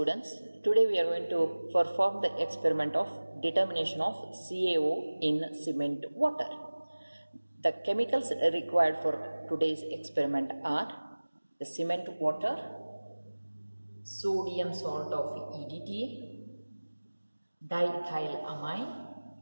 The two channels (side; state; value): both; inverted; correlation -1.00